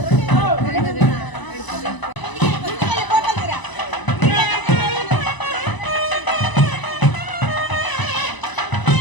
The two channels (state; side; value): late; right; 1.0 ms